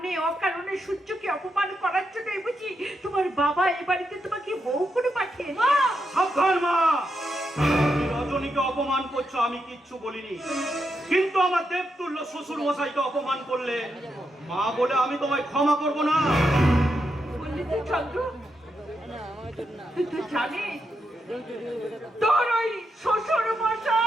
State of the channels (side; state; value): both; normal; correlation 0.83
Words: অকারণে সূর্যকে অপমান করার জন্যই বুঝি তোমার বাবা এ বাড়িতে তোমাকে বউ করে পাঠিয়েছে? মা, সাবধান মা, তুমি রজনীকে অপমান করছো, আমি কিচ্ছু বলিনি। কিন্তু আমার দেবতুল্য শ্বশুর মশাইকে অপমান করলে মা বলে আমি তোমায় ক্ষমা করব না। বললি তো চন্দ্র, তুই তো জানিস তোর ওই শ্বশুর